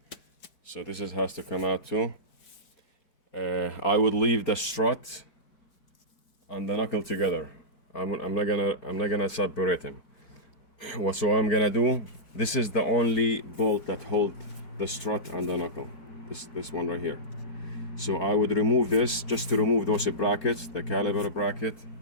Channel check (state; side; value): late; right; 4.6 ms